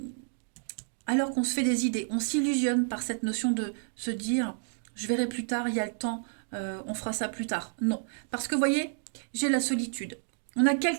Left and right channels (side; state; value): left; silent; digital silence